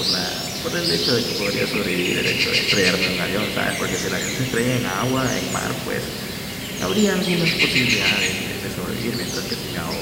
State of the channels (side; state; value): both; identical; correlation 1.00